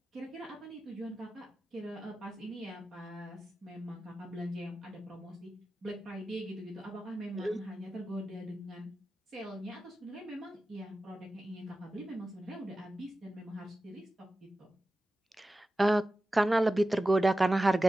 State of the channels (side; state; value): both; normal; correlation 0.94